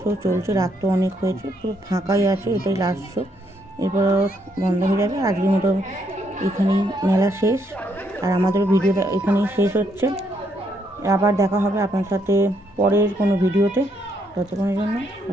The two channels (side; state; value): both; normal; correlation 0.74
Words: শো চলছে, রাত তো অনেক হয়েছে, পুরো ফাঁকাই আছে, এটাই লাস্ট শো, এরপর বন্ধ হয়ে যাবে। আজকের মতো এখানেই মেলা শেষ, আর আমাদের ভিডিওটা এখানেই শেষ হচ্ছে। আবার দেখা হবে আপনার সাথে পরের কোনো ভিডিওতে, ততক্ষণের জন্য